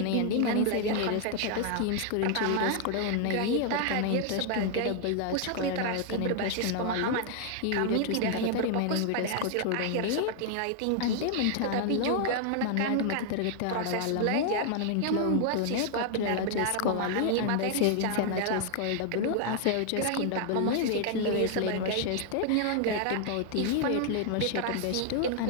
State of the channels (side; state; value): both; different; correlation 0.00